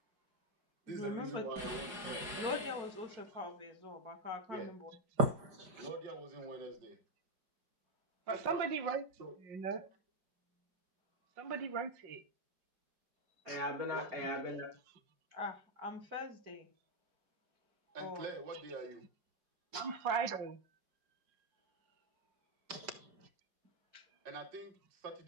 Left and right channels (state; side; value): late; left; 4.9 ms